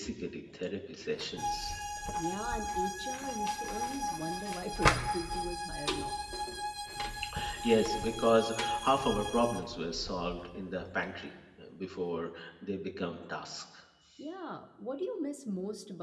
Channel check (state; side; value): identical; both; correlation 1.00